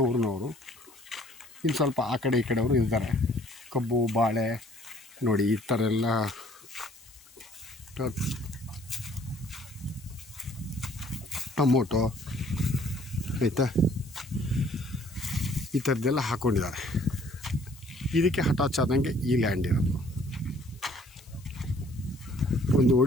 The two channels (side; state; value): left; noise; hiss, 25 dB below the sound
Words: ಊರಿನವರು. ಇನ್ನು ಸ್ವಲ್ಪ ಆ ಕಡೆ ಈ ಕಡೆಯವರು ಇದ್ದಾರೆ. ಕಬ್ಬು, ಬಾಳೆ ನೋಡಿ ಈ ಥರ ಎಲ್ಲ ಟೊಮೊಟೊ ಆಯಿತಾ, ಈ ಥರದ್ದೆಲ್ಲ ಹಾಕ್ಕೊಂಡಿದ್ದಾರೆ. ಇದಕ್ಕೆ ಅಟ್ಯಾಚ್ ಆದಂಗೆ ಈ ಲ್ಯಾಂಡ್ ಇರೋದು. ಒಂದು